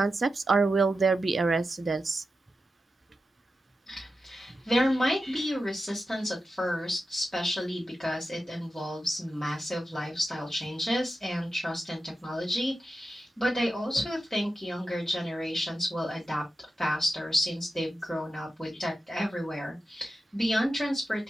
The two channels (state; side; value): normal; both; correlation 0.91